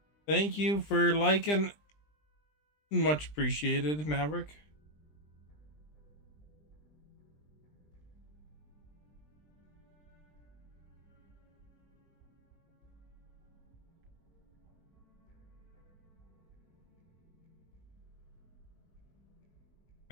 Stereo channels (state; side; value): late; right; 20 ms